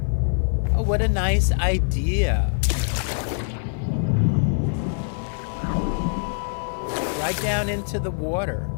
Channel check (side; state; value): right; silent; 58 dB below the other